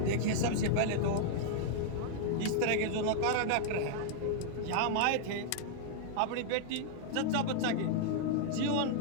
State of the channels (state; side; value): different; both; correlation -0.01